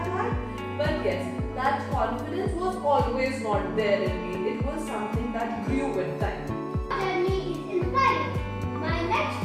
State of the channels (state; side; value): identical; both; correlation 1.00